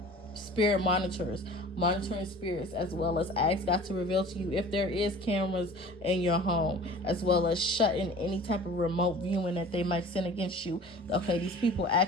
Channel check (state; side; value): normal; both; correlation 0.43